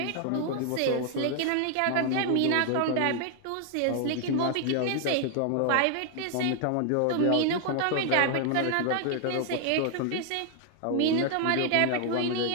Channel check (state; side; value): different; both; correlation 0.00